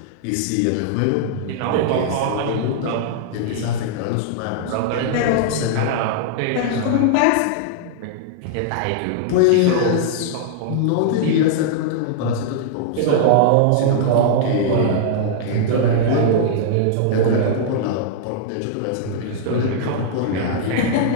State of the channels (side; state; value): both; different; correlation -0.01